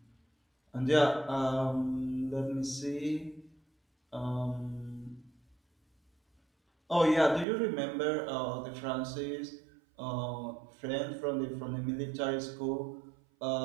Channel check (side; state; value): left; drops out; at 7.5 s